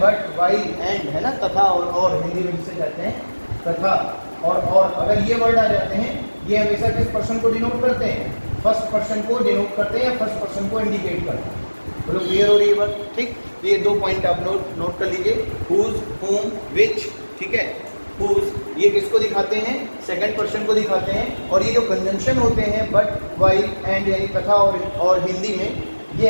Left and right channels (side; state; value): both; inverted; correlation -1.00